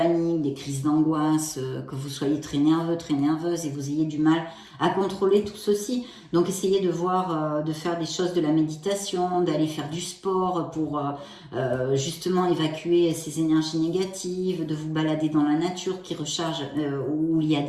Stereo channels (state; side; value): identical; both; correlation 1.00